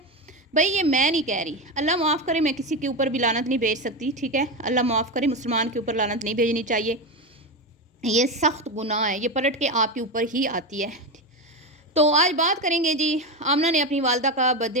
भाई, ये मैं नहीं कह रही। अल्लाह माफ़ करे, मैं किसी के ऊपर भी लानत नहीं भेज सकती, ठीक है। अल्लाह माफ़ करे, मुसलमान के ऊपर लानत नहीं भेजनी चाहिए। ये सख्त गुनाह है, ये पलट के आपके ऊपर ही आती है। तो आज बात करेंगे जी। आमना ने अपनी वालदा का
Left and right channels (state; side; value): normal; both; correlation 0.16